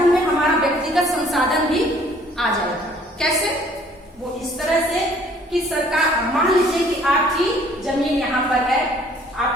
में हमारा व्यक्तिगत संसाधन भी आ जाएगा। कैसे? वो इस तरह से कि सरकार, मान लीजिए कि आपकी जमीन यहाँ पर है,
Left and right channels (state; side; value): normal; both; correlation 0.58